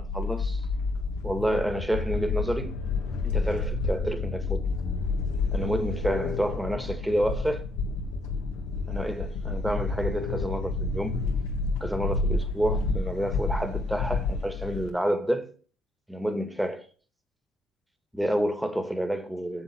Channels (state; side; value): normal; both; correlation 0.75